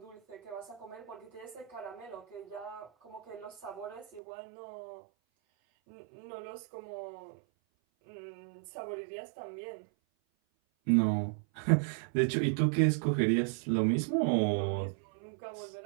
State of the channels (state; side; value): drops out; left; at 4.2 s